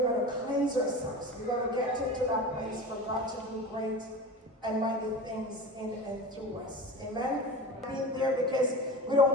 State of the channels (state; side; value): normal; both; correlation 0.31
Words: to cleanse ourselves. We're going to get into that place for God to do great and mighty things in and through us. Amen? Being there because we